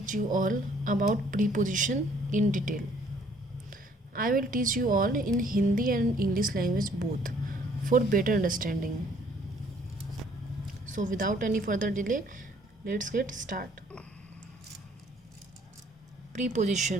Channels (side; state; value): both; normal; correlation 0.61